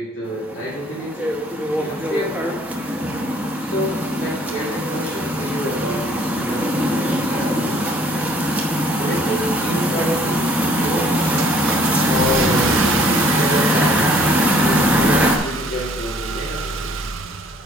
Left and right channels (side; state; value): both; normal; correlation 0.59